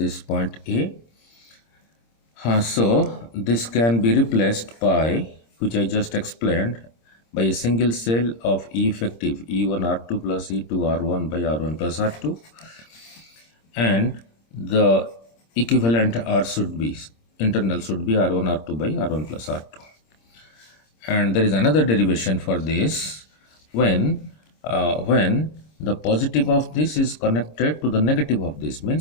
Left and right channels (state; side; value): late; right; 26 ms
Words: point A. So this can be replaced by, which I just explained, by a single cell of E effective E1 R2 plus E2 R1 by R1 plus R2, and the equivalent R should be, internal should be R1 R2 by R1 plus R2. And there is another derivation for this, when the positive of this is connected to the negative of this,